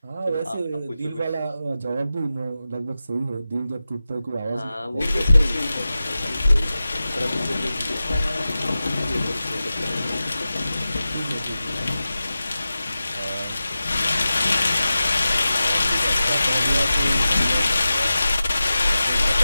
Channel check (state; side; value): inverted; both; correlation -0.94